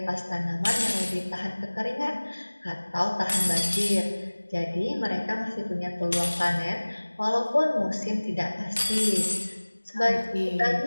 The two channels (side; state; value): both; inverted; correlation -1.00